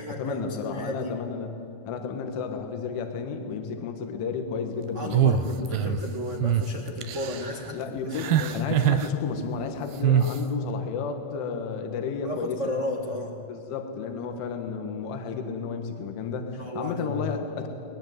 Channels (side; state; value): right; late; 1.5 ms